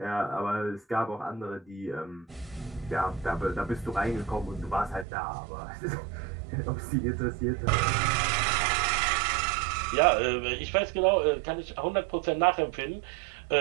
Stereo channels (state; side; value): drops out; left; at 5.1 s